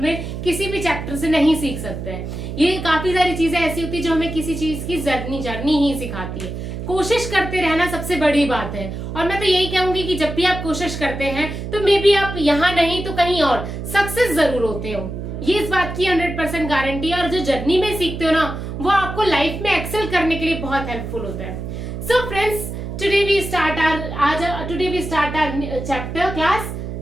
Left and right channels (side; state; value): right; noise; hum, 7 dB below the sound